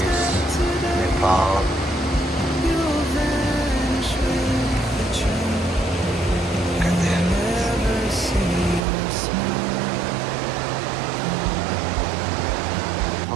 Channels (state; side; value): drops out; left; at 8.8 s